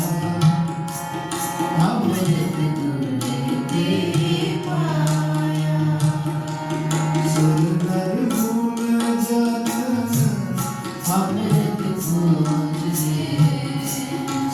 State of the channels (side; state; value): both; identical; correlation 1.00